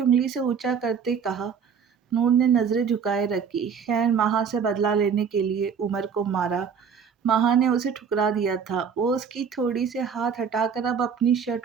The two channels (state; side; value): quieter; left; 6.7 dB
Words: انگلی سے اونچا کرتے کہا۔ نور نے نظریں جھکائے رکھی، خیر ماہا سے بدلہ لینے کے لیے عمر کو مارا۔ ماہا نے اسے ٹھکرا دیا تھا۔ وہ اس کی تھوڑی سے ہاتھ ہٹا کر اب اپنی